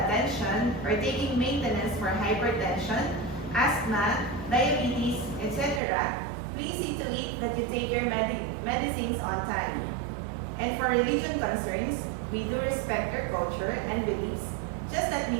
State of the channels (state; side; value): drops out; left; at 5.8 s